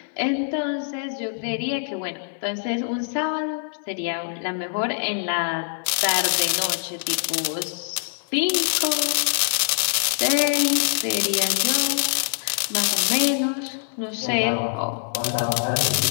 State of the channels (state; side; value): silent; right; 59 dB below the other